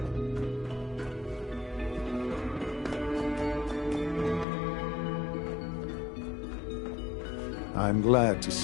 I'm glad to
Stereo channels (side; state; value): right; drops out; at 4.5 s